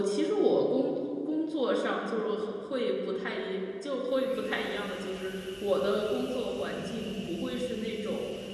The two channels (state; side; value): identical; both; correlation 1.00